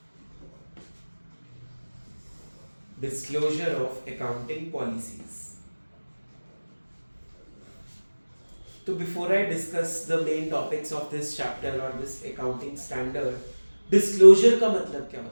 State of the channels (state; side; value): inverted; both; correlation -1.00